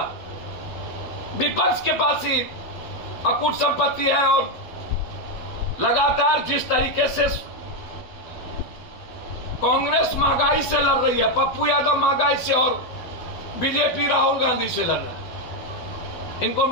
विपक्ष के पास ही अकूट संपत्ति है और लगातार जिस तरीके से कांग्रेस महंगाई से लड़ रही है, पप्पू यादव महंगाई से और बीजेपी राहुल गांधी से लड़ रहा है, इनको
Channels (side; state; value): right; late; 12 ms